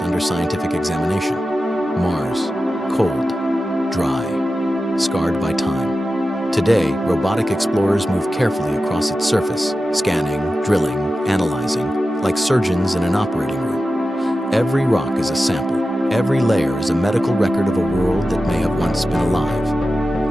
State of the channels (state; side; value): normal; both; correlation 0.93